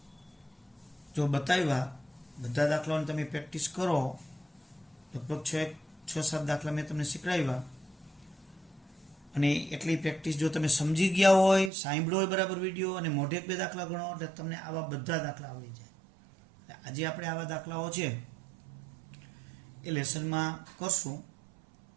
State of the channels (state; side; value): drops out; left; at 11.7 s